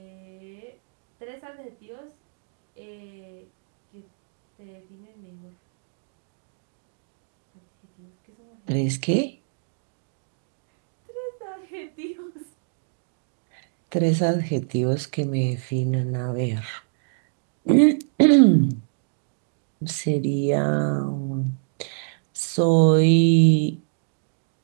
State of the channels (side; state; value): left; silent; digital silence